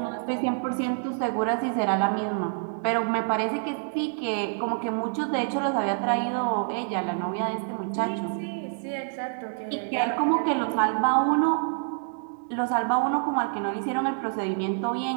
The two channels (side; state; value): left; silent; digital silence